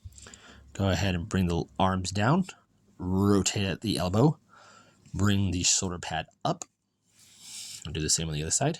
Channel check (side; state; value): both; identical; correlation 1.00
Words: Go ahead and bring the arms down, rotate at the elbow, bring the shoulder pad up, and do the same on the other side.